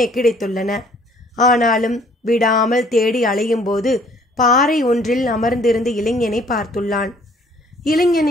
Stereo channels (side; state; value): both; normal; correlation 0.59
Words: கிடைத்துள்ளன. ஆனாலும் விடாமல் தேடி அலையும் போது பாறை ஒன்றில் அமர்ந்திருந்த இளைஞனை பார்த்துள்ளான்.